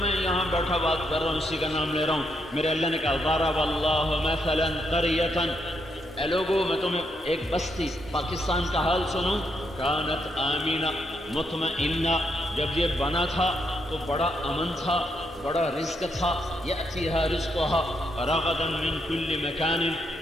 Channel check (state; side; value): normal; both; correlation 0.78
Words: میں یہاں بیٹھا بات کر رہا ہوں اسی کا نام لے رہا ہوں۔ میرے اللہ نے کہا ضرب اللہ مثلا قریۃ، اے لوگو میں تمہیں ایک بستی پاکستان کا حال سنوں، کانت آمینہ مطمئنہ، جب یہ بنا تھا تو بڑا امن تھا، بڑا رزق تھا، یأتیہا رزقہا رغدا من کل مکان،